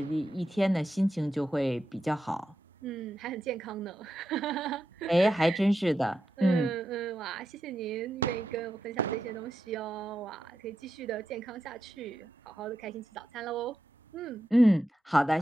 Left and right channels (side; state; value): both; normal; correlation 0.87